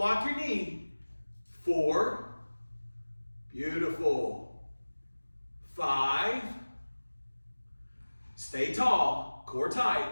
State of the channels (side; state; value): both; inverted; correlation -1.00